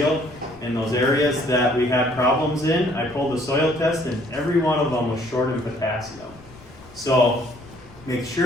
In those areas that we had problems in, I pulled the soil test, and every one of them was short in potassium. So make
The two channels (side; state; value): left; noise; rumble, 22 dB below the sound